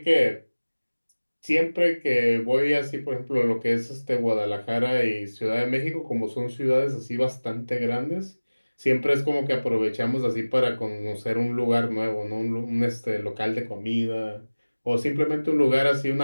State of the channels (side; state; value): both; inverted; correlation -1.00